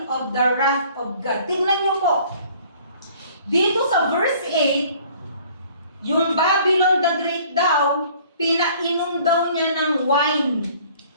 of the wrath of God. Tingnan niyo po. Dito sa verse 8, yung Babylon the Great daw, pinainom daw niya ng wine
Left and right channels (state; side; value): inverted; both; correlation -0.54